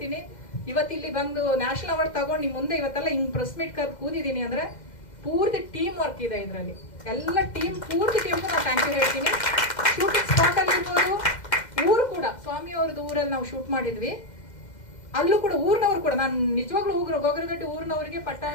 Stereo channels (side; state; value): right; late; 2.1 ms